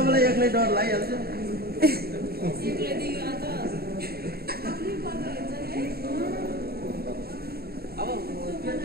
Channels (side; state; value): left; late; 0.45 ms